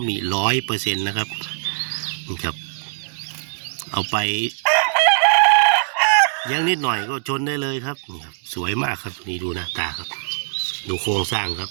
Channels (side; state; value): left; silent; digital silence